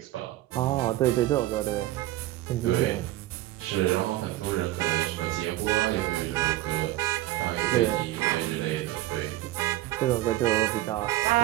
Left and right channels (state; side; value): quieter; left; 16.1 dB